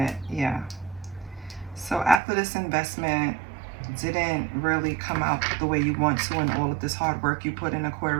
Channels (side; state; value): left; drops out; at 2.2 s